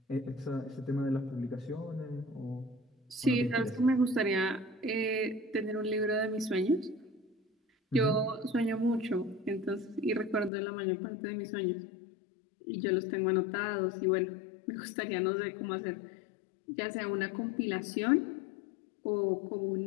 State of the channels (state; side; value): drops out; right; at 10.5 s